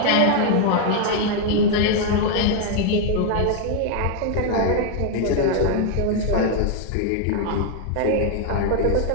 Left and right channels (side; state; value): both; different; correlation 0.00